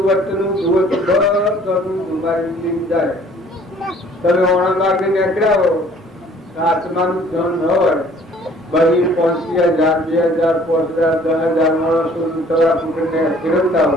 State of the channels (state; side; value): normal; both; correlation 0.55